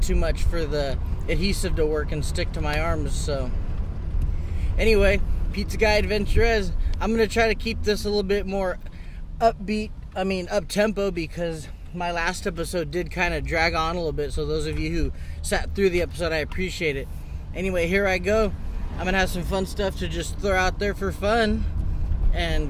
too much for the adhesive to work and stick to my arms. So anyway, Pizza Guy AdventurEZ. I'm going to try to keep this a little bit more up-tempo, because my last episode did kind of drag on a little bit. So those of you who sat through the episode, I appreciate it. Anyway, here I go. I'm going to have some fun stuff to just throw out there for fun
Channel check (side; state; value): both; identical; correlation 1.00